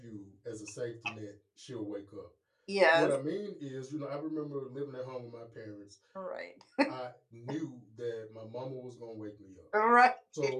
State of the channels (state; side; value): identical; both; correlation 1.00